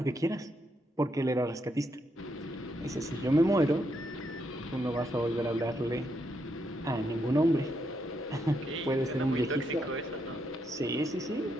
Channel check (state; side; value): normal; both; correlation 0.79